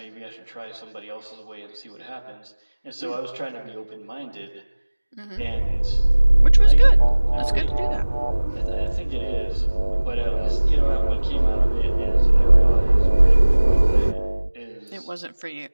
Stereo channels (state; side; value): inverted; both; correlation -1.00